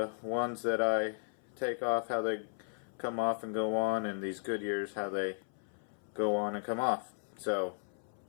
ones that I take off, how they come off and go on, and these Goodyears how they go on and come off. So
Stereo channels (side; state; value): right; silent; 54 dB below the other